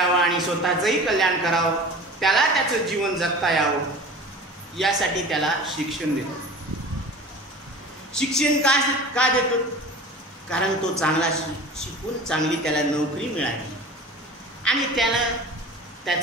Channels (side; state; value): both; normal; correlation 0.38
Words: आणि स्वतःचंही कल्याण करावं, त्याला त्याचं जीवन जगता यावं, यासाठी त्याला शिक्षण देतो. शिक्षण का देतो? कारण तो चांगला शिकून चांगली त्याला नोकरी मिळाली आणि त्यानं